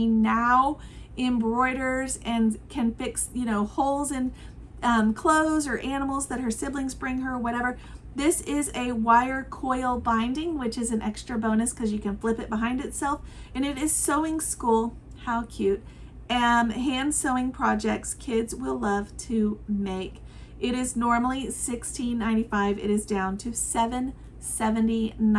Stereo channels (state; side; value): identical; both; correlation 1.00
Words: now embroiders and can fix, holes in clothes or animals that her siblings bring her, whatever. This is a wire coil binding, which is an extra bonus because you can flip it behind itself. And it is sewing school. How cute. Hand sewing projects kids will love to make. It is normally $16.95. It is down to